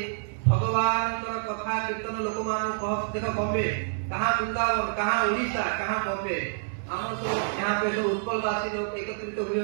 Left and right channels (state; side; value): silent; left; digital silence